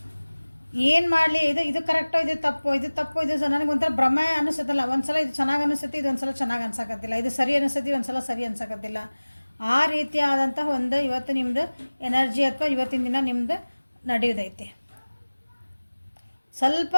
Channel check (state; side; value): inverted; both; correlation -1.00